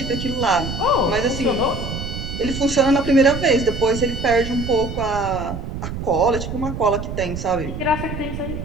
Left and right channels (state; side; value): noise; right; rumble, 6 dB below the sound